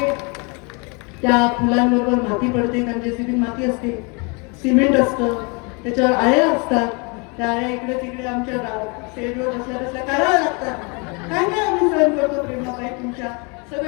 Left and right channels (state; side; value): quieter; right; 32.0 dB